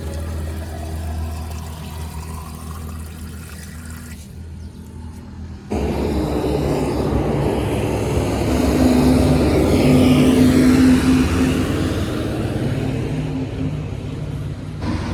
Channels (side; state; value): both; identical; correlation 1.00